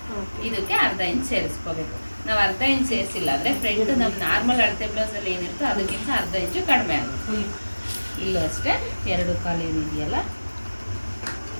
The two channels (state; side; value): inverted; both; correlation -1.00